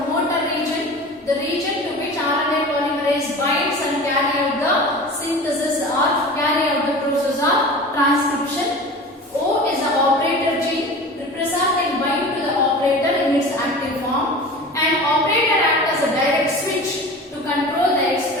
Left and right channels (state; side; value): normal; both; correlation 0.36